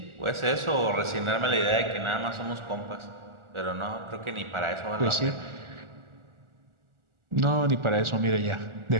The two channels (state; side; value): late; left; 1.4 ms